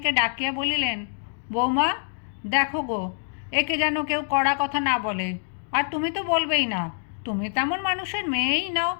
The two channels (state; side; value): silent; right; digital silence